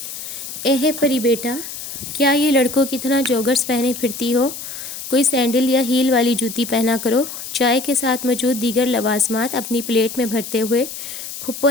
اے پری بیٹا، کیا یہ لڑکوں کی طرح جوگرز پہنے پھرتی ہو؟ کوئی سینڈل یا ہیل والی جوتی پہنا کرو۔ چائے کے ساتھ موجود دیگر لوازمات اپنی پلیٹ میں بھرتے ہوئے پھپھو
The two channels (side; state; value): left; noise; hiss, 9 dB below the sound